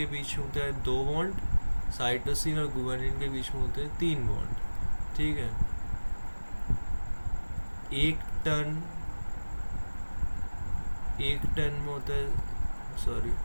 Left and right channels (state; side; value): inverted; both; correlation -1.00